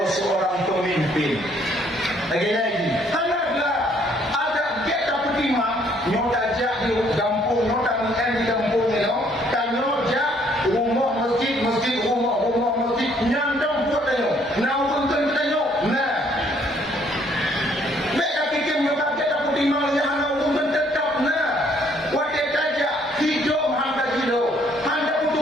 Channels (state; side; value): normal; both; correlation 0.65